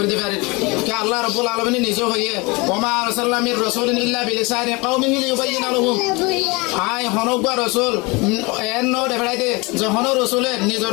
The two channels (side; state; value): right; quieter; 26.2 dB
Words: দিবে কে আল্লাহ রাব্বুল আলামিন নিজে হইয়ে ওমা আরসালনামির রাসূলিন ইল্লা বিলিসানি কওমিহি লিয়ুবাইয়িনা লাহুম। আই হনবা রাসূল এন নো দেখাইতে যখন রাসূলে